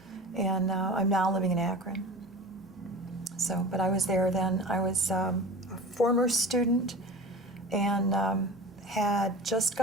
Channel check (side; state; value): both; normal; correlation 0.36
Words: And I'm now living in Akron. So, but I was there then. I was a former student and had just